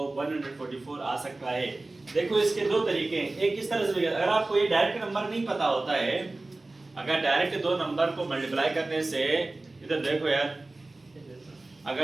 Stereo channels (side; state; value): left; quieter; 3.0 dB